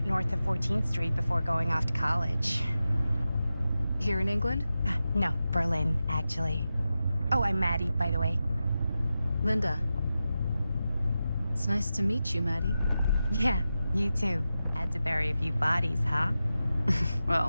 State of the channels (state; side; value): inverted; both; correlation -0.92